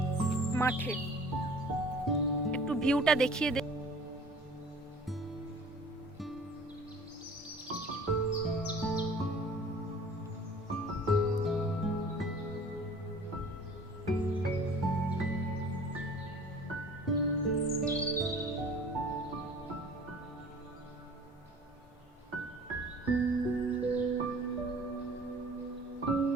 মাঠে। একটু ভিউটা দেখিয়ে দে।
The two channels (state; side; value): normal; both; correlation 0.47